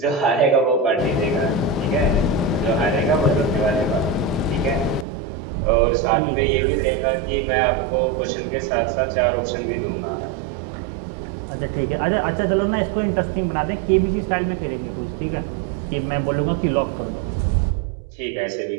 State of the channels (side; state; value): left; drops out; at 5.1 s